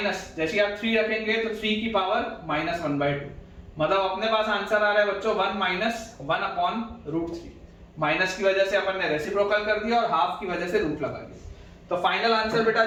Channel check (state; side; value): identical; both; correlation 1.00